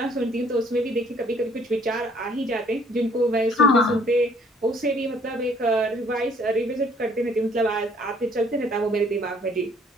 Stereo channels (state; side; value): normal; both; correlation 0.61